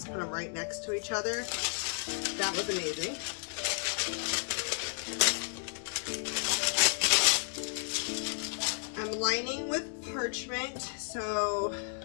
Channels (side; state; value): right; silent; 56 dB below the other